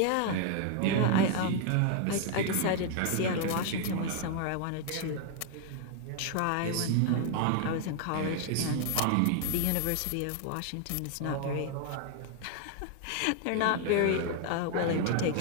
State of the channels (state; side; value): different; both; correlation 0.00